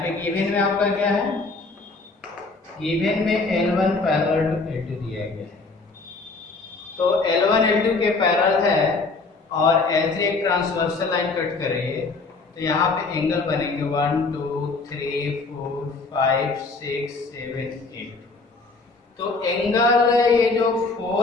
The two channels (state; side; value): quieter; right; 3.8 dB